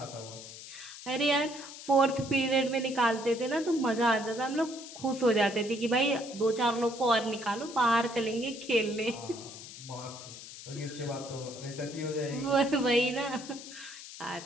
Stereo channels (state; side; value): noise; left; hiss, 14 dB below the sound